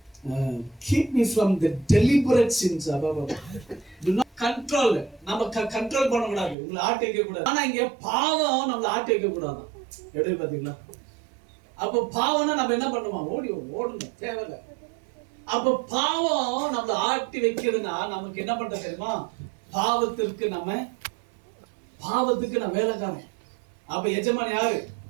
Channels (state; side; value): drops out; left; at 6.6 s